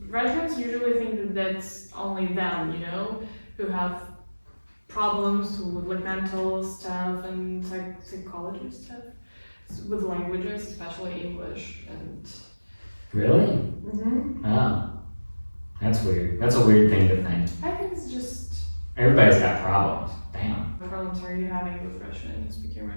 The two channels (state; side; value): inverted; both; correlation -1.00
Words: Russians usually think that that's only them, who have problems with mental stuff and psychology stuff with languages, especially English and. Really? Mm-hmm. Oh, that's weird. That's a weird thing to think. I think it's just. Everybody's got problems. Damn. What problems are you having with Russian and speaking